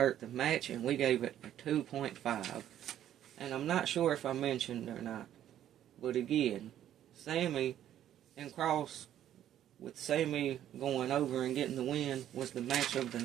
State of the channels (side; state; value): left; quieter; 11.3 dB